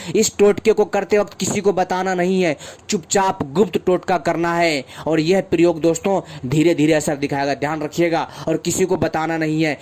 इस टोटके को करते वक्त किसी को बताना नहीं है, चुपचाप गुप्त टोटका करना है और यह प्रयोग दोस्तों धीरे धीरे असर दिखाएगा। ध्यान रखिएगा और किसी को बताना नहीं है,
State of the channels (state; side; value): identical; both; correlation 1.00